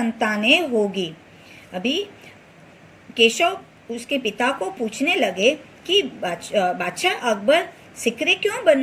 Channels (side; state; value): both; identical; correlation 1.00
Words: होगी। अभी केशव उसके पिता को पूछने लगे कि बादशाह अकबर सिकरी क्यों